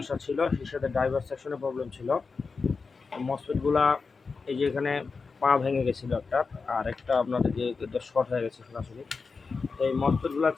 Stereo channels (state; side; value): quieter; right; 4.6 dB